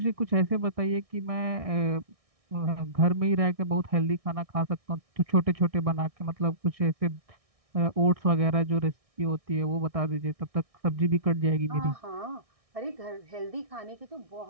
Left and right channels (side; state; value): left; late; 1.6 ms